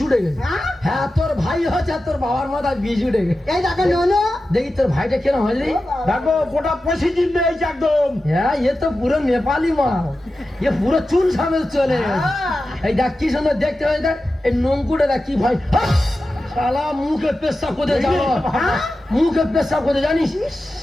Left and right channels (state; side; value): normal; both; correlation 0.93